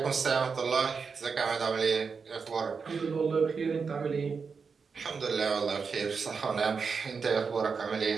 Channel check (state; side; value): quieter; left; 5.4 dB